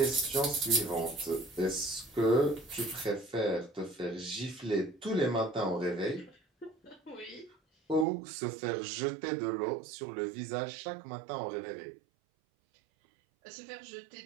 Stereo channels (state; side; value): drops out; left; at 8.1 s